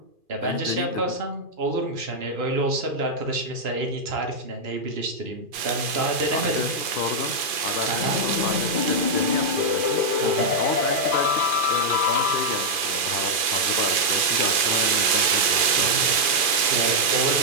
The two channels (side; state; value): left; late; 2.4 ms